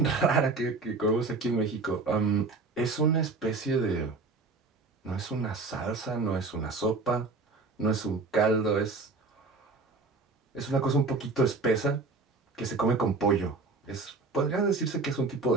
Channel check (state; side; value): quieter; left; 3.8 dB